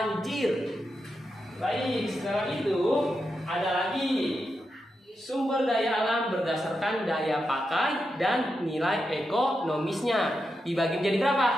Baik, sekarang itu ada lagi sumber daya alam berdasarkan daya pakai dan nilai ekonomisnya. Dibagi menjadi berapa?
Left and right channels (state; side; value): normal; both; correlation 0.87